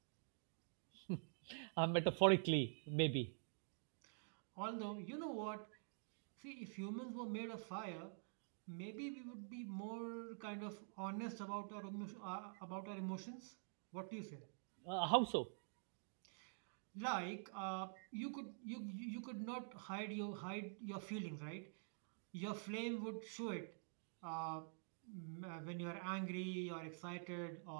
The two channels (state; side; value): silent; left; digital silence